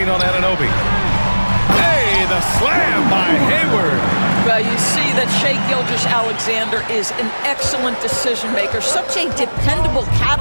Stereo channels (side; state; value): both; inverted; correlation -1.00